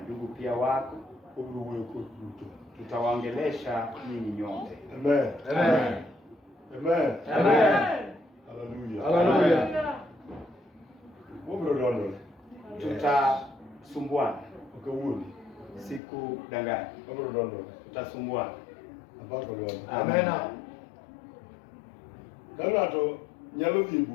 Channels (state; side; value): drops out; right; at 16.0 s